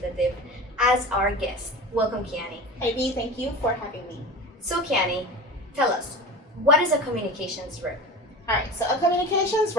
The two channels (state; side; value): normal; both; correlation 0.32